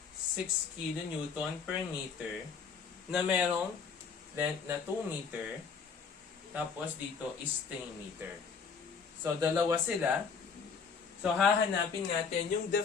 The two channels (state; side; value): quieter; right; 5.7 dB